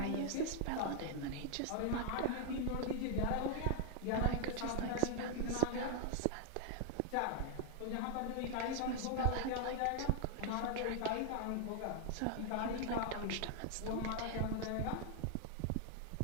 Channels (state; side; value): different; both; correlation 0.00